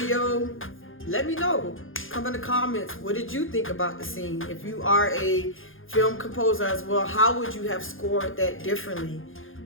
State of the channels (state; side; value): late; right; 0.59 ms